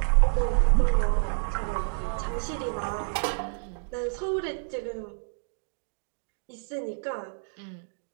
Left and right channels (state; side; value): silent; left; digital silence